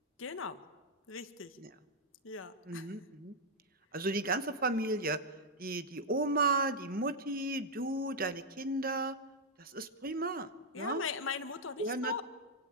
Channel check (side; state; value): both; normal; correlation -0.02